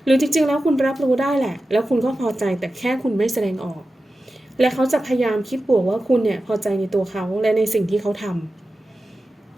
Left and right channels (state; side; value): normal; both; correlation 0.93